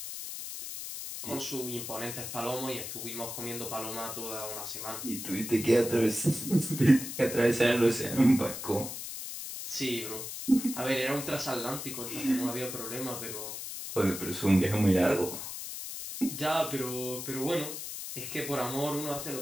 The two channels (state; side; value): noise; left; hiss, 7 dB below the sound